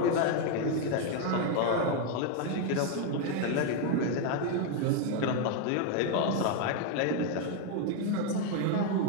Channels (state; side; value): different; both; correlation 0.01